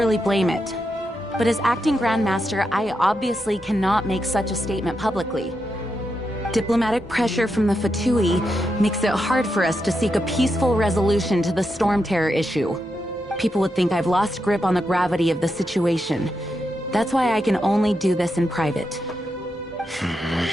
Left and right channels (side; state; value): both; normal; correlation 0.85